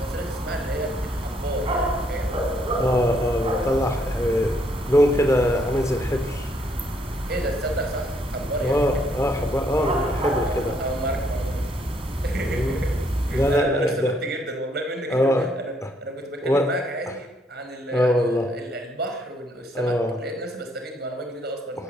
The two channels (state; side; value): normal; both; correlation 0.70